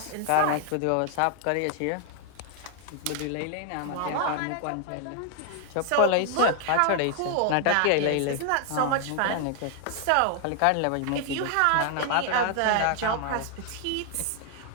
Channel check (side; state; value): both; different; correlation 0.00